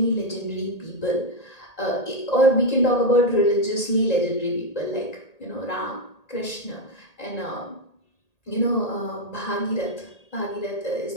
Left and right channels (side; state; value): right; late; 1.8 ms